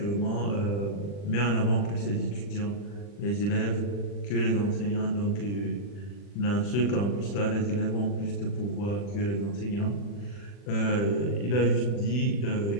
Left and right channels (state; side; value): late; right; 40 ms